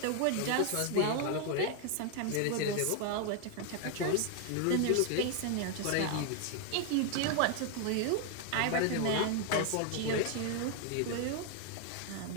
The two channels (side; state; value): both; different; correlation 0.00